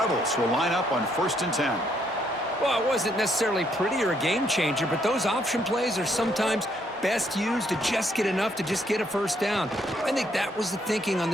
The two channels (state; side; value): normal; both; correlation 0.71